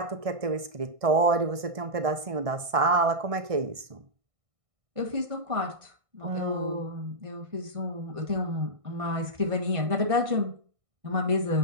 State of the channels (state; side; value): late; left; 1.6 ms